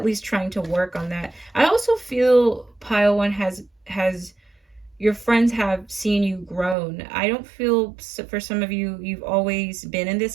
least trying to work on that. I also feel pile one has your friends have seen you grown. I don't feel, for some of you, you've always been in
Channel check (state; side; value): drops out; left; at 6.8 s